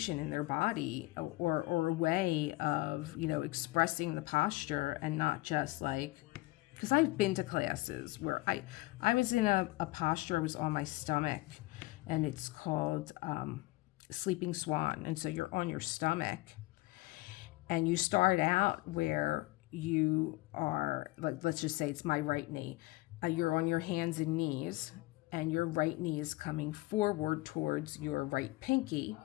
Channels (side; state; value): right; quieter; 20.6 dB